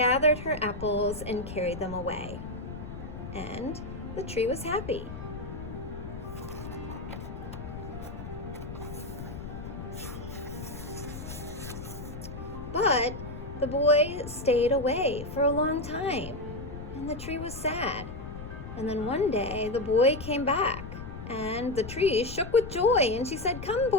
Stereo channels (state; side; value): noise; left; rumble, 9 dB below the sound